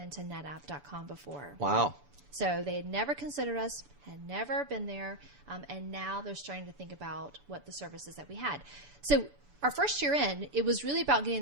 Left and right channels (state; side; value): late; left; 6.9 ms